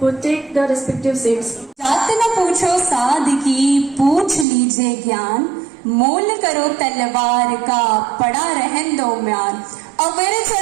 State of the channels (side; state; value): left; drops out; at 4.5 s